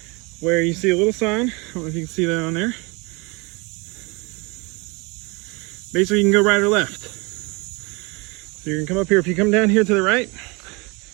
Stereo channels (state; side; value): quieter; left; 28.2 dB